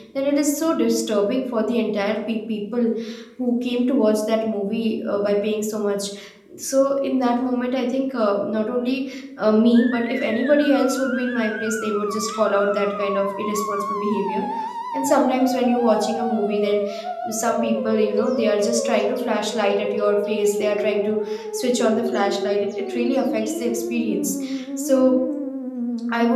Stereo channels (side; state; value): both; identical; correlation 1.00